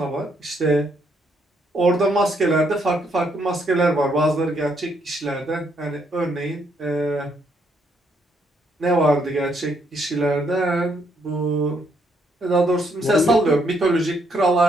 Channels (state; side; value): normal; both; correlation 0.73